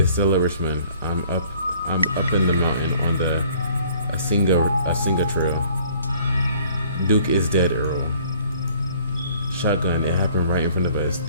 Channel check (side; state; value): both; inverted; correlation -0.57